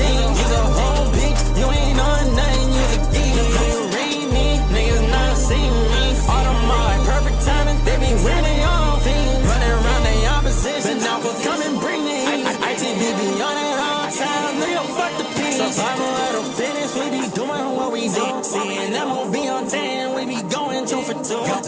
You's a whole bitch, you ain't on nothing, you's a geek. You read me, niggas not see me. Automatic, perfect timing, they be winning all things. Running around the opposition, now for come and bring me. ITB be on it all time, nigga, fuck the peace. Survival at a finish, we be doing what we do. Seeing MOB on 10, we be going 2 for 2.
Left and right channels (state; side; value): identical; both; correlation 1.00